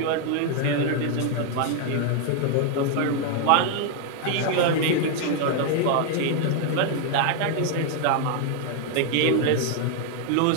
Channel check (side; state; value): both; different; correlation 0.00